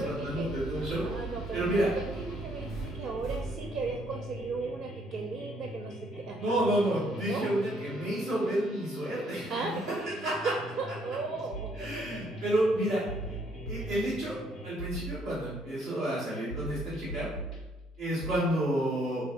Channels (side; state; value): both; normal; correlation 0.67